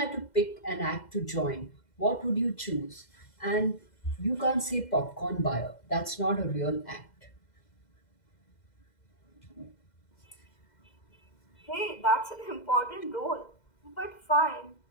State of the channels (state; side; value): late; right; 2.0 ms